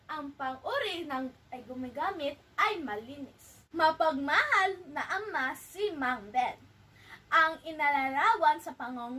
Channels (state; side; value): identical; both; correlation 1.00